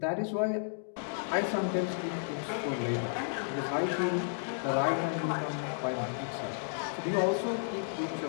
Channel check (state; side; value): silent; right; digital silence